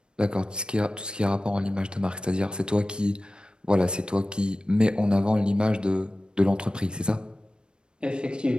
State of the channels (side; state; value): left; late; 0.052 ms